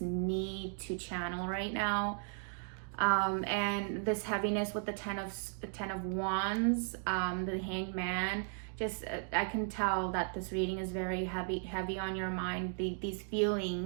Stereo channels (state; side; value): silent; left; 54 dB below the other